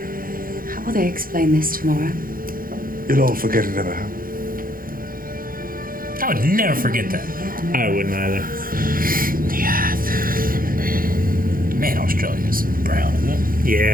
how will they explain this tomorrow? You'll all forget it ever happened. I would never forget that. I wouldn't either. Yeah. Man, Australia's brown, isn't it?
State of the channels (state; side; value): late; left; 0.41 ms